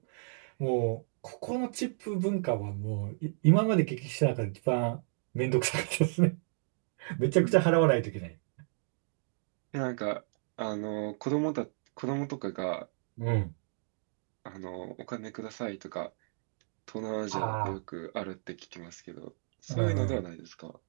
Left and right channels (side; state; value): left; silent; digital silence